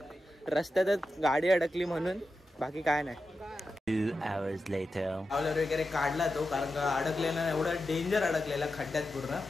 रस्त्यातच गाडी अडकली म्हणून, बाकी काय नाही. 2 hours later. ट्रॅव्हलर वगैरे काढला तो, कारण का अडकलेला एवढा डेंजर अडकलेला खड्ड्यात पूर्ण.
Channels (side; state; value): both; normal; correlation 0.90